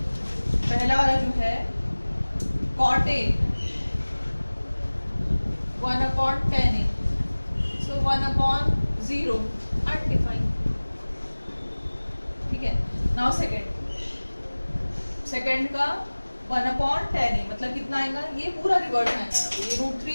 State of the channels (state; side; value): inverted; both; correlation -1.00